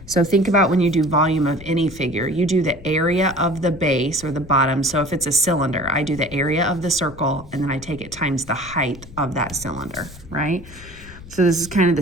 So think about when you do volume of any figure, you do the area of the base or the bottom. So if it's a cylinder, I do the area of the circle and then I take it times the height of that cylinder, right? So this is kind of the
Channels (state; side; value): noise; left; rumble, 17 dB below the sound